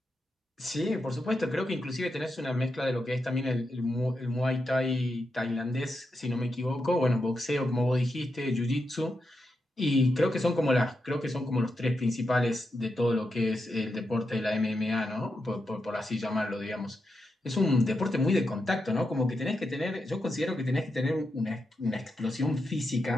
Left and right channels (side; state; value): both; normal; correlation 0.86